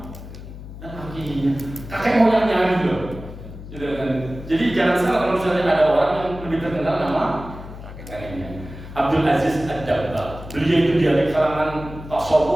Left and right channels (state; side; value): noise; left; hum, 13 dB below the sound